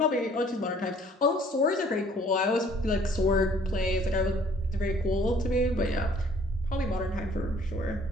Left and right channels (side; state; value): both; normal; correlation 0.57